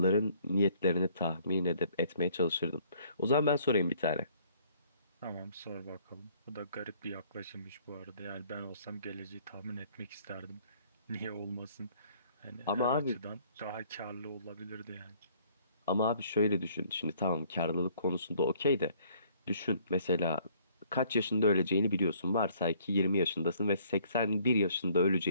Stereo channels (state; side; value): inverted; both; correlation -0.60